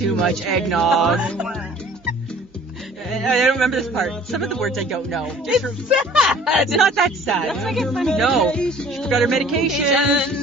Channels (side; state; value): both; normal; correlation 0.51